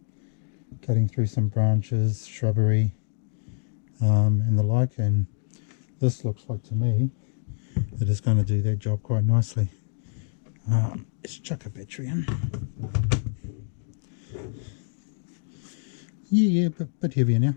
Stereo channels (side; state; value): right; silent; digital silence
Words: through some branches, shrubbery, and the like, and this looks like to me that it's going to do that job quite nicely. Let's chuck a battery in. Yeah, bit heavier now.